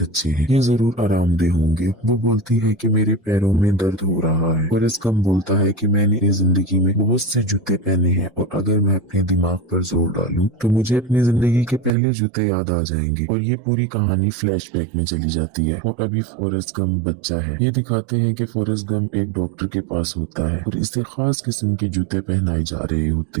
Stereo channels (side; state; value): left; drops out; at 11.9 s